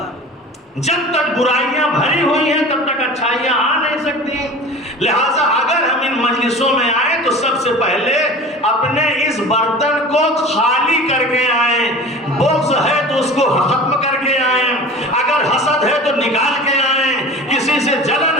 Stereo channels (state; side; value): normal; both; correlation 0.38